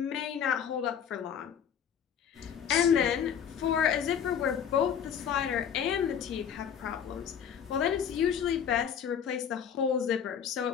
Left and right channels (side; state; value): right; quieter; 8.2 dB